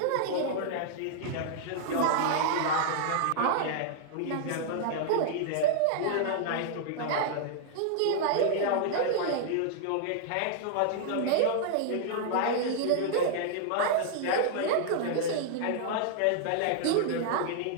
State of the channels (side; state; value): both; different; correlation -0.01